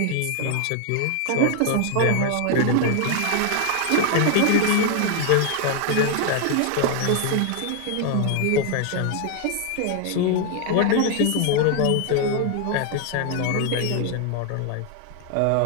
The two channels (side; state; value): both; different; correlation 0.00